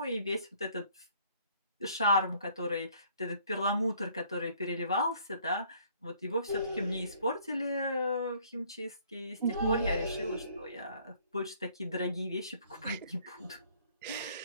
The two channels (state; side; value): inverted; both; correlation -0.60